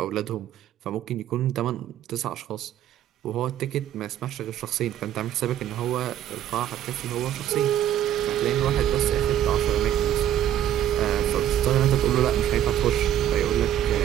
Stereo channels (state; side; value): quieter; left; 11.4 dB